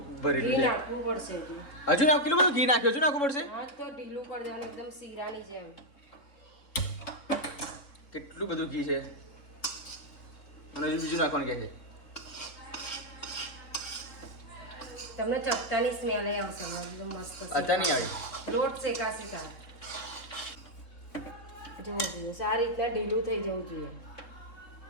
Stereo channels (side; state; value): right; late; 3.8 ms